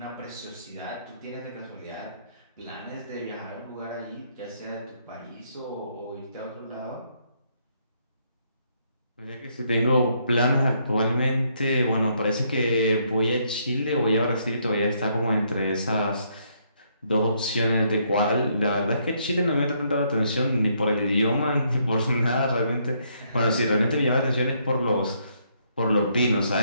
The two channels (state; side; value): inverted; both; correlation -0.72